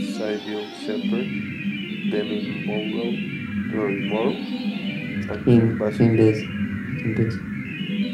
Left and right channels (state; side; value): identical; both; correlation 1.00